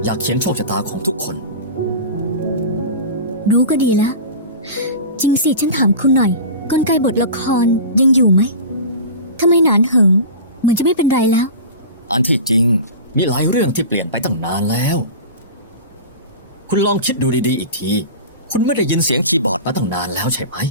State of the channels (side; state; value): both; inverted; correlation -0.32